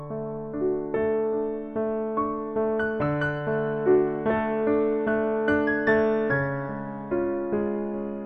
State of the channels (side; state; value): both; identical; correlation 1.00